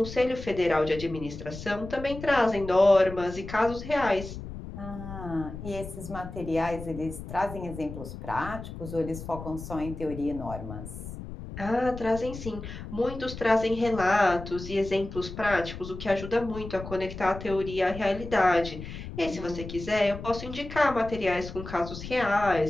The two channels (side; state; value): left; noise; rumble, 10 dB below the sound